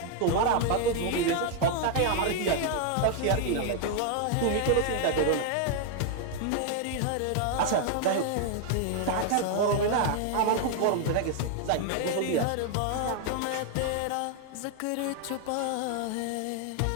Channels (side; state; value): both; different; correlation 0.00